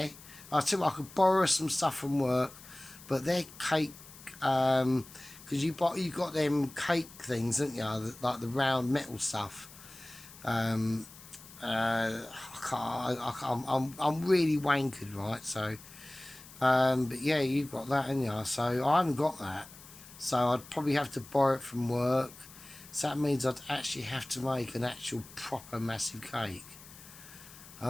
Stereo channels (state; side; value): noise; left; hiss, 19 dB below the sound